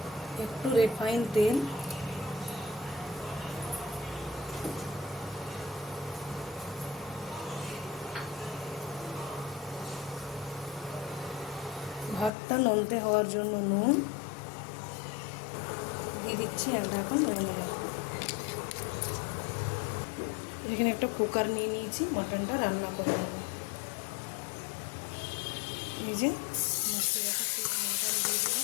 একটু রিফাইন তেল, ভাতটা নলতে হওয়ার জন্য নুন দিয়ে দিচ্ছি। এক ঢাকন ধরে নেব। এখানে একটা কুকার নিয়ে নিয়েছি, মটনটা রান্না করে নেব। এই যে মটন দিয়ে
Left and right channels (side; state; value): right; drops out; at 12.3 s